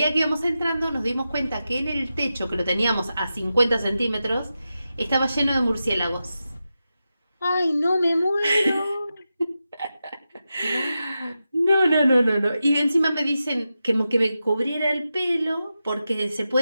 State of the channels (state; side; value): inverted; both; correlation -0.91